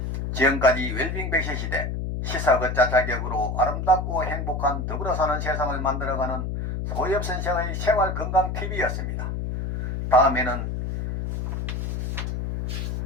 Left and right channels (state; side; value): noise; left; hum, 3 dB below the sound